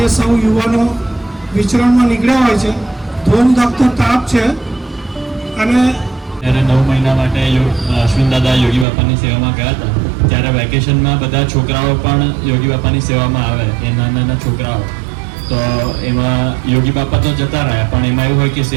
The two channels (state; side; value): drops out; left; at 8.8 s